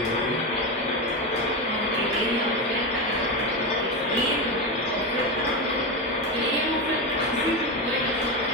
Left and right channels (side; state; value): both; normal; correlation 0.15